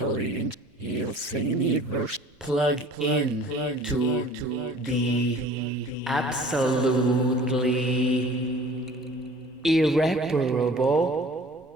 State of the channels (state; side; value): normal; both; correlation 0.47